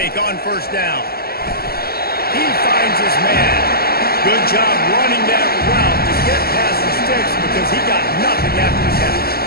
on 1st down. He finds his man. Good job running that route to get past the sticks because he got nothing after the catch.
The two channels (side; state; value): right; late; 0.45 ms